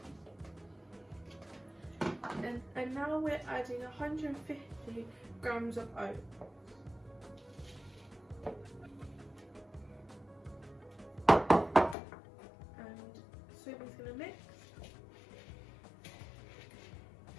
And now we're adding 150 grams of oats. And Sophie's going to mix.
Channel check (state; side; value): drops out; right; at 12.0 s